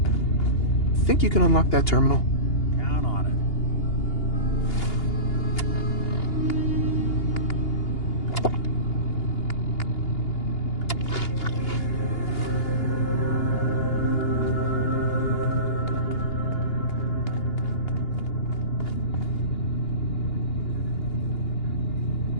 Think you can unlock that terminal? Count on it.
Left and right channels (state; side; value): late; right; 2.8 ms